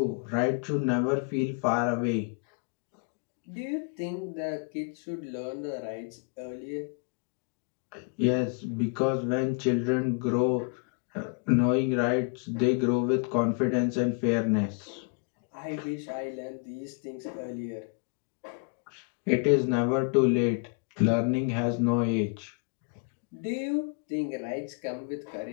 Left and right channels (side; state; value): right; quieter; 37.2 dB